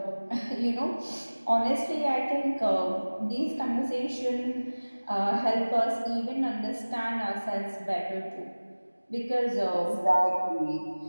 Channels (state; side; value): inverted; both; correlation -1.00